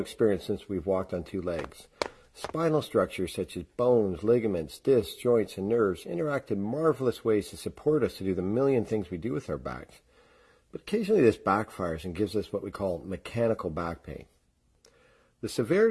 since we've walked on two legs. Spinal structures such as bones, ligaments, discs, joints, and nerves interact in marvelous ways to support us to do the million things we do with our backs. But occasionally this backfires and gives us what we call mechanical back pain. The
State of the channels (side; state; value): both; identical; correlation 1.00